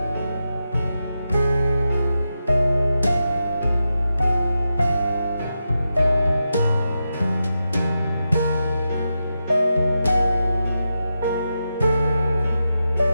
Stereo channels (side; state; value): both; inverted; correlation -0.88